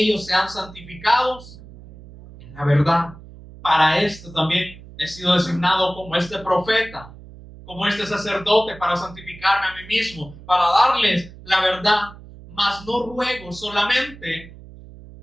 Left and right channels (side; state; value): right; noise; hum, 18 dB below the sound